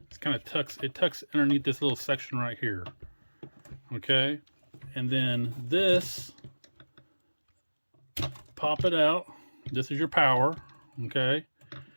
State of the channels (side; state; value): both; inverted; correlation -1.00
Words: It's kind of tucks underneath this little section right here. Okay, and then this, pop it out. This is your power. Okay,